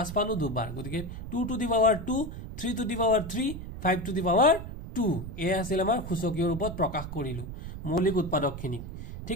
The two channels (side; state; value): right; noise; rumble, 9 dB below the sound